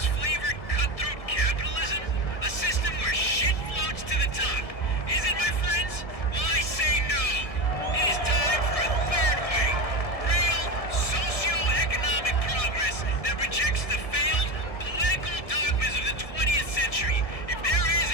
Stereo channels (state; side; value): late; right; 1.7 ms